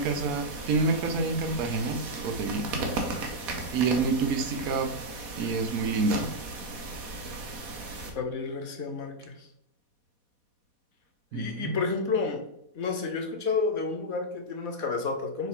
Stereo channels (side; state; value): left; late; 4.1 ms